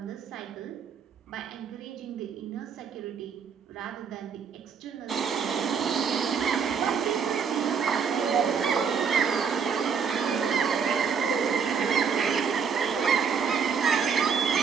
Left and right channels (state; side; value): quieter; left; 6.4 dB